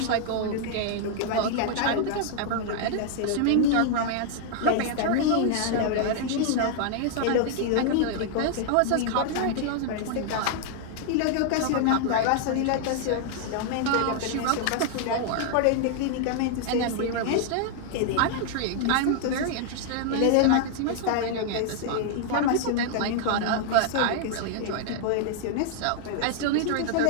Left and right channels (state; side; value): different; both; correlation 0.00